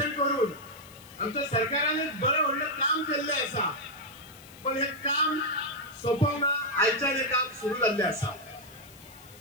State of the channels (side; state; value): left; noise; hiss, 22 dB below the sound